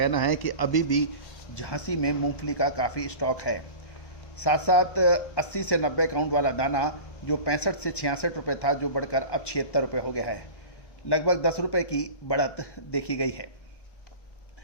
है कि अभी भी झांसी में मूंगफली का काफ़ी स्टॉक है। साथ साथ 80 से 90 काउंट वाला दाना जो 65 से 66 रुपये था, जो बढ़कर अब 76 रुपये हो गया है। लगभग 10 रुपये की बढ़त देखी गई है।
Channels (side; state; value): right; late; 1.2 ms